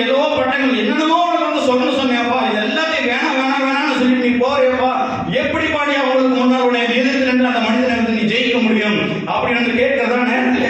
ஏதோ பட்டங்கள் என்னென்னமோ உனக்கு வந்து சொல்லணும்னு சொன்னேன்ப்பா, இது எல்லாத்தையும் வேணாம் வேணாம் வேணாம்னு சொல்லிட்டு நீ போறியப்பா, எப்படி பாடி அவங்களுக்கு முன்னால் உன்னை எதிர்த்து நின்று அந்த மனிதனை வந்து நீ ஜெயிக்க முடியும் அப்படின்னு வந்து கேட்கிறதா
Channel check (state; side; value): identical; both; correlation 1.00